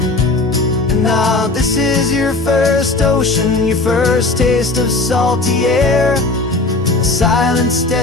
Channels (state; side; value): quieter; right; 3.3 dB